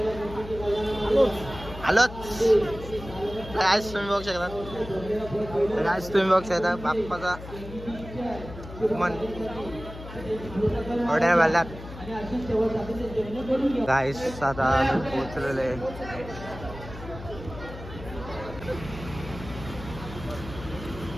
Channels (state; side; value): noise; left; hum, 13 dB below the sound